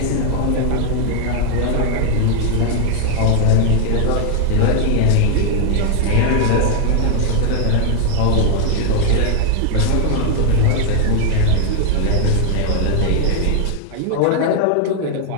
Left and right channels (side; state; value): both; different; correlation 0.00